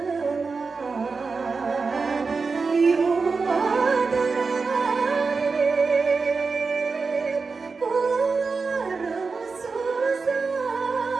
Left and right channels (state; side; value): quieter; left; 4.5 dB